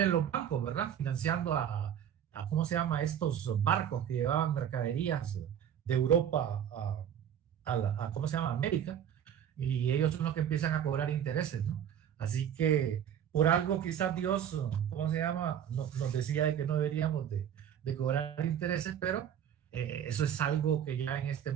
los bancos, ¿verdad? Financiando a ¿cómo se llama? Estos barcos que llevaban mercaderías de Europa ¿cómo se llama? América, y ellos son los que empiezan a cobrar intereses, ¿no? Así que por algo quizás Dios, ¿cómo se llama? Nos decía de que no deberíamos de cobrar intereses, pero eso es algo que ya en este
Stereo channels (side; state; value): left; quieter; 9.4 dB